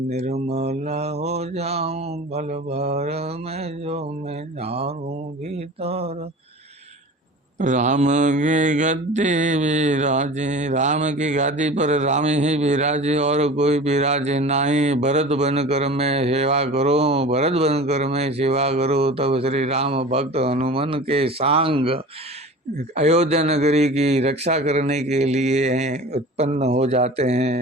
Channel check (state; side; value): normal; both; correlation 0.38